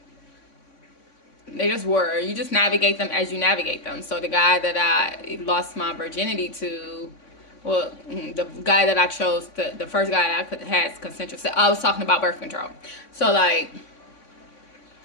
they just were. You just navigate them as you navigate them. So the guy that I lost my virginity to, well, the guy that I chose, the first guy that I had consensual sex, I was talking about birth control. So like,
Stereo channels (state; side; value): late; right; 3.5 ms